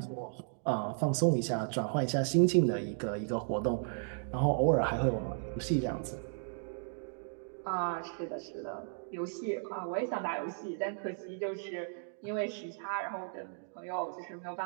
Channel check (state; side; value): silent; left; digital silence